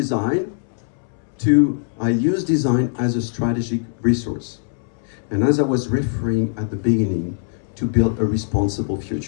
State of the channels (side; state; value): right; silent; 65 dB below the other